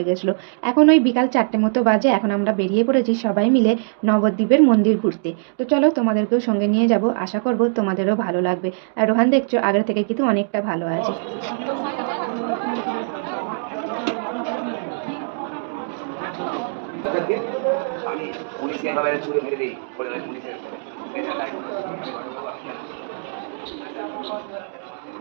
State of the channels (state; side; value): silent; left; digital silence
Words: গেছিলো। এখন ওই বিকাল 4টে মতো বাজে, এখন আমরা বেরিয়ে পড়েছি সবাই মিলে নবদ্বীপের মন্দির ঘুরতে। তো চলো তোমাদেরকেও সঙ্গে নিয়ে যাব, আশা করবো তোমাদেরও ভালো লাগবে। আর রোহান দেখছো আগের থেকে কিন্তু অনেকটা ভালো আছে। আমি পুলিশকে এভাবে ছুড়ে মেরে দিই বলে পুলিশের